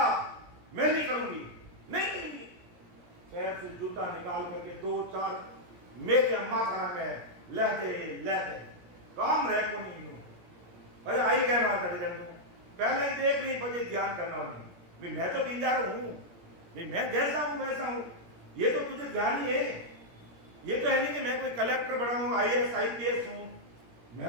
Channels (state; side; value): late; left; 17 ms